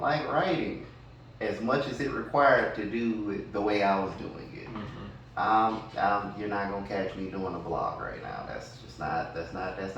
like writing as much as it required to do it the way I was doing it. You're not gonna catch me doing a blog right now. That's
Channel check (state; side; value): identical; both; correlation 1.00